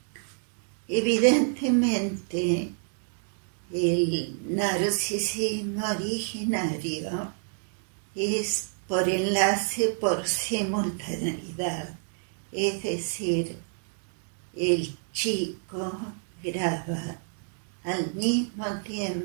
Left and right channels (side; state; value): left; silent; 59 dB below the other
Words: Evidentemente, el narcisismo originario es por enlace por simultaneidad, es decir, el chico graba al mismo